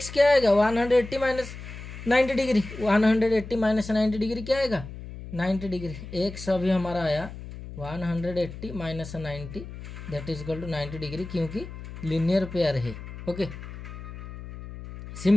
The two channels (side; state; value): left; noise; hum, 12 dB below the sound